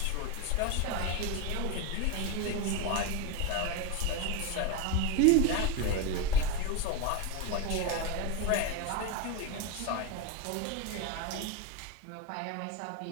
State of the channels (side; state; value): both; different; correlation 0.03